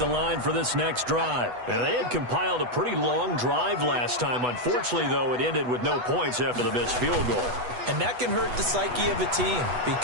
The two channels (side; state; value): left; late; 8.1 ms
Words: line for this next drive. And they had compiled a pretty long drive last time. Unfortunately, though, it ended with no points after the missed field goal. And that can hurt the psyche of a team